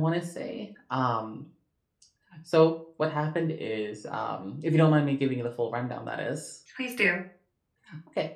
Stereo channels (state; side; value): identical; both; correlation 1.00